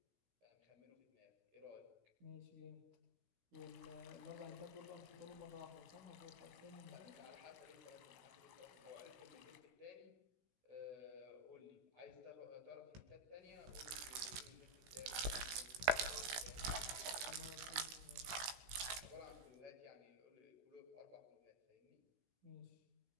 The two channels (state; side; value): late; left; 16 ms